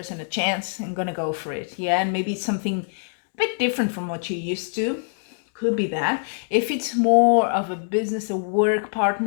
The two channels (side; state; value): right; silent; digital silence